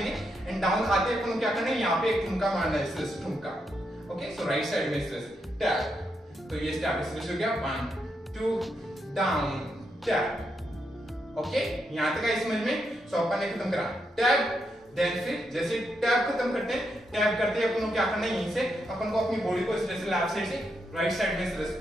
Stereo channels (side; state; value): both; normal; correlation 0.82